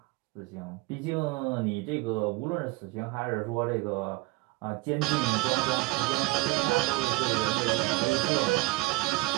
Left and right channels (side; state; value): left; quieter; 21.6 dB